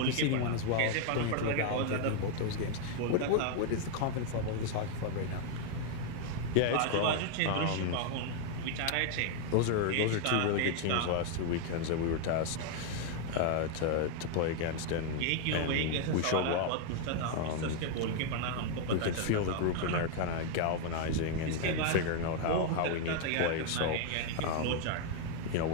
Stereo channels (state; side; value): different; both; correlation 0.00